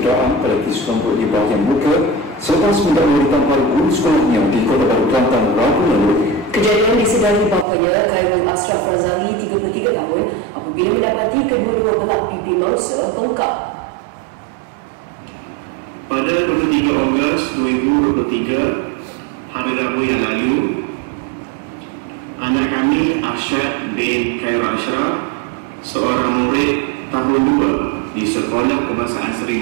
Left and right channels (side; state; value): left; drops out; at 7.7 s